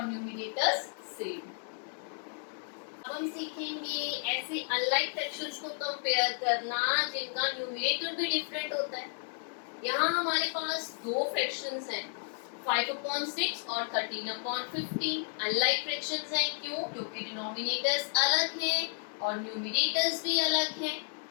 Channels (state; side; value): silent; right; 56 dB below the other